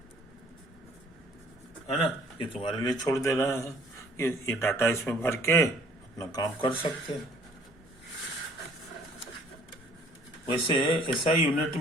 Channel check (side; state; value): both; normal; correlation 0.57